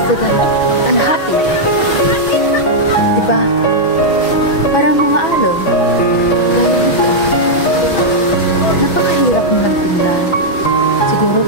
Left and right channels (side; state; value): right; late; 6.1 ms